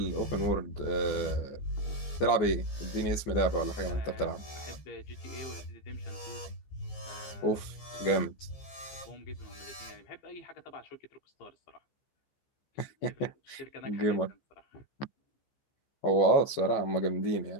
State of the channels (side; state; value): right; late; 15 ms